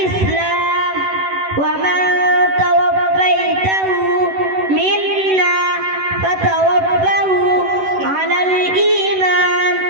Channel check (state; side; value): late; left; 11 ms